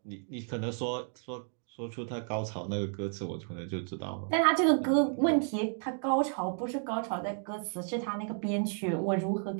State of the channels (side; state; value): left; silent; 56 dB below the other